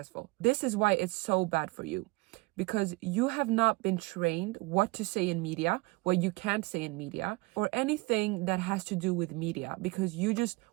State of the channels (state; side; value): quieter; left; 24.3 dB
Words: This is why it's so bad for you, because you have not been trained what to say in media, what you can't say in media, or anything that has to do with media, because you just